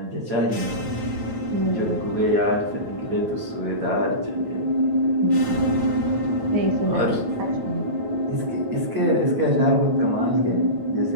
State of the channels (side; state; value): left; late; 9.1 ms